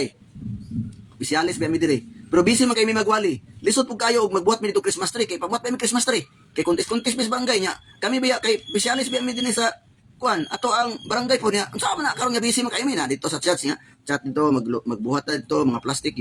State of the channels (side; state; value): both; identical; correlation 1.00